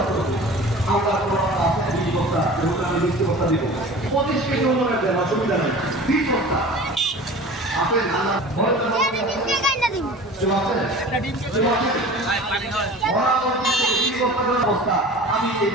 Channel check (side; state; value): both; normal; correlation 0.40